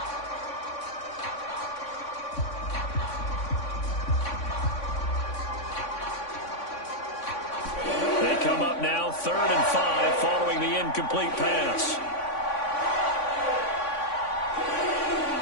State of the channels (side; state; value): right; late; 3.5 ms